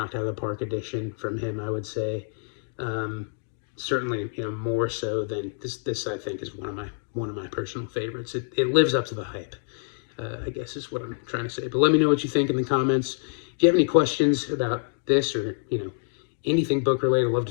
out of the park edition from him, I would say. Certainly, you know, more so than this I think is one of my personal favorites. It lives up to the hype. I guess is what I'm trying to say. But let me know what you think in the comments. If you have any questions about this or, anything book related, I'd love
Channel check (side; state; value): right; silent; digital silence